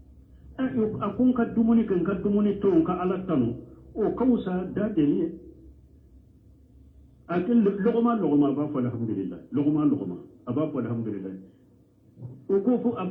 akun ka dumuni ton ka alatanu o kausa da deliye akil lugma ba fa alhamdulillah lugma aba fa alhamdulillah o ko fu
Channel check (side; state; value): both; identical; correlation 1.00